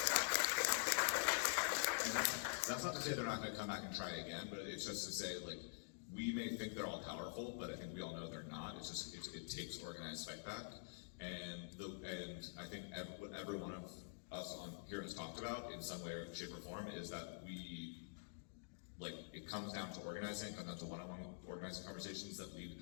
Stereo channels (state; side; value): silent; right; digital silence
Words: That's not to say they're not going to come back and try again, but it's just to say, like, we may think they're all powerful, but I think we all know they're not. It's just it takes organized fight back, and I think what every one of us on here has talked about in some way, or shape, or form is that it comes down to organizing, it comes down to one-on-one organizing conversations that